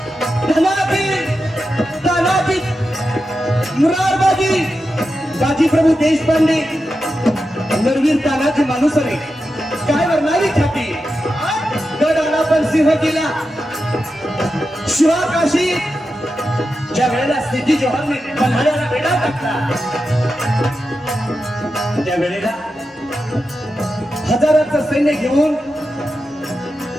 धनाजी, तानाजी, मुरारबाजी, बाजीप्रभू देशपांडे, नरवीर तानाजी मानुसरे, काय वर्णावी छाती, गड आला पण सिंह गेला. शिवा काशी ज्या वेळेला सिद्धी जोहरने पन्हाळ्याला वेढा टाकला, त्या वेळेला हजाराचं सैन्य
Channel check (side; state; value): both; normal; correlation 0.90